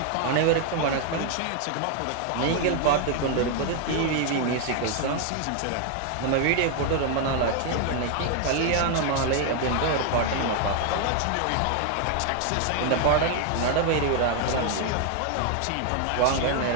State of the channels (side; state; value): both; different; correlation 0.00